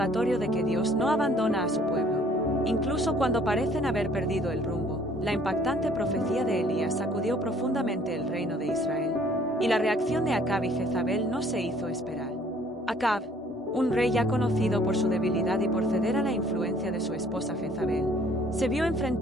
de que Dios no abandona a su pueblo, incluso cuando parecen haber perdido el rumbo. La impactante profecía de Elías sacudió profundamente el reino de Israel, y la reacción de Acab y Jezabel no se hizo esperar. Acab, un rey ya conocido por su debilidad y por ceder a la influencia de su esposa Jezabel, se vio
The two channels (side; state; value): both; normal; correlation 0.58